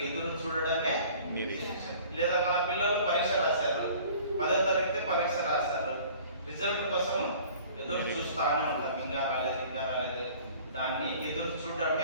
ఎదురు చూడడమే నిరీక్షణ. లేదా మన పిల్లలు పరీక్ష రాశారు, 10వ తరగతి పరీక్ష రాశారు, రిజల్ట్ కోసం ఎదురు చూస్తానే ఉంటాం. ఇంకా రాలేదు, దాన్ని ఎదురు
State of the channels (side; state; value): both; inverted; correlation -0.49